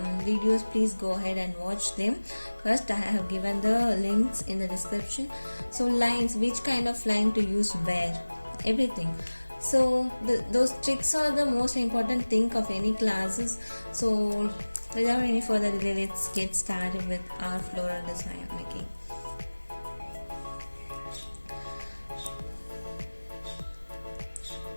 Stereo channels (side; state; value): both; inverted; correlation -1.00